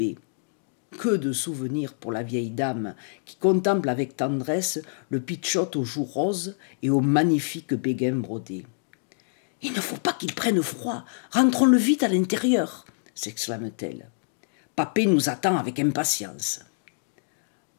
Que de souvenirs pour la vieille dame qui contemple avec tendresse le pitchout aux joues roses et aux magnifiques béguins brodés. « Il ne faut pas qu'il prenne froid, rentrons-le vite à l'intérieur !» s'exclame-t-elle. « Papé nous attend avec impatience. »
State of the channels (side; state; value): right; silent; digital silence